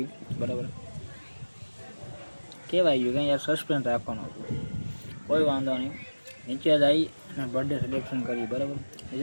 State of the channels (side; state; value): both; inverted; correlation -1.00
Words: બરાબર. કહેવાય ગયું કે યાર સસ્પેન્સ રાખવાનું હતું. કોઈ વાંધો નહીં. નીચે જઈ અને બર્થડે સેલિબ્રેશન કરી બરાબર.